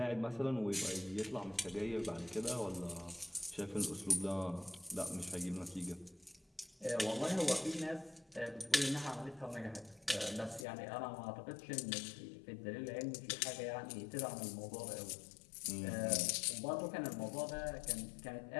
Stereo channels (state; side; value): drops out; right; at 10.7 s